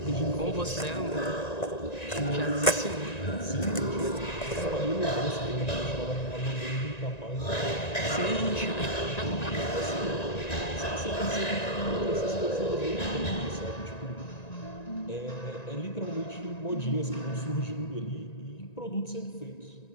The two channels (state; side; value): late; right; 1.9 ms